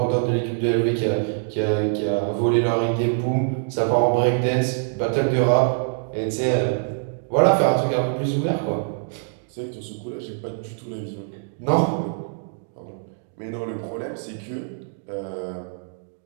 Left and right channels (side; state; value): left; silent; digital silence